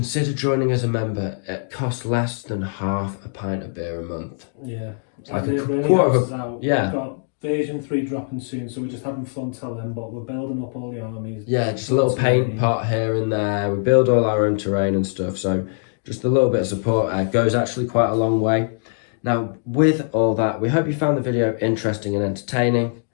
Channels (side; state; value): right; silent; digital silence